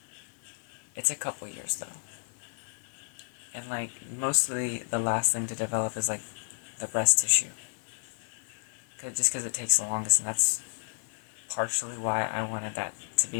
It's a couple years, though. And, like, mostly the last thing to develop is, like, the breast tissue. Just because it takes the longest, and that's partially why I wanted that to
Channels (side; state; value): right; silent; digital silence